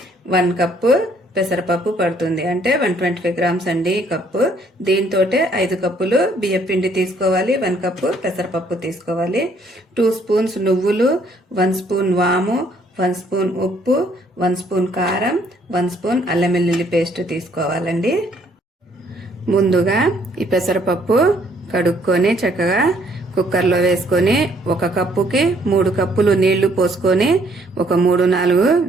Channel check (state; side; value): normal; both; correlation 0.65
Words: 1 కప్పు పెసరపప్పు పడుతుంది, అంటే 125 గ్రామ్స్ అండి ఈ కప్పు. దీంతో 5 కప్పులు బియ్యం పిండి తీసుకోవాలి, 1 కప్పు పెసరపప్పు తీసుకోవాలి. 2 స్పూన్స్ నువ్వులు, 1 స్పూన్ వాము, 1 స్పూన్ ఉప్పు, 1 స్పూన్ కారం, 1 స్పూన్ అల్లం వెల్లుల్లి పేస్ట్ తీసుకోవాలండి. ముందుగా ఈ పెసరపప్పు కడుక్కొని చక్కగా కుక్కర్లో వేసుకొని 1 కప్పుకి 3 కప్పులు నీళ్లు పోసుకొని ఒక 3-4